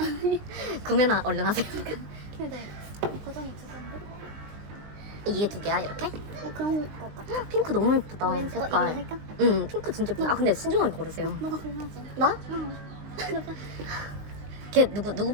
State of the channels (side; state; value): left; late; 20 ms